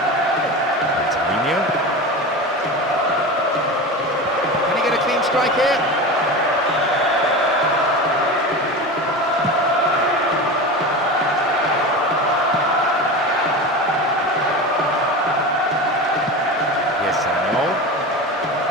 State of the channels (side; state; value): both; normal; correlation 0.27